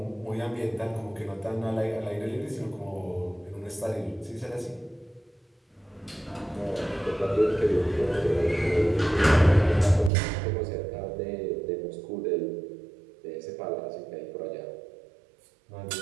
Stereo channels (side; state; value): left; drops out; at 10.1 s